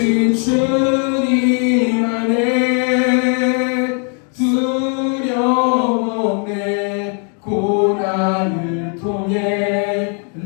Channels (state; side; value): quieter; right; 39.4 dB